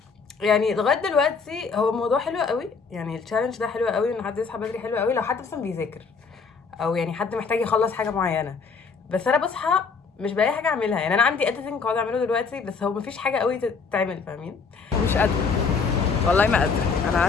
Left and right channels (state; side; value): quieter; right; 5.2 dB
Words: يعني لغايه دلوقتي هو الموضوع حلو قوي، يعني التشالنج ده حلو قوي ان حد يصحى بدري، حلو قوي لو حد مثلا بيذاكر او يعني حد محتاج يخلص حاجه معينه. بس انا بصحى مش بلاقي حاجه اعملها، يعني انا عندي اديتنج قاعد اعمله دلوقتي بس هو مفيش حاجه قوي تتعمل، فاهمين؟ مش قادره والله، ما قادره. انا